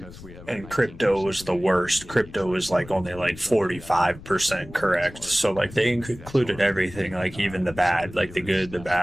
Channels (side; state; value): left; noise; rumble, 17 dB below the sound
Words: crypto was the worst. Crypto was like only like 45% correct. So like they included everything, like even the bad, like the good, the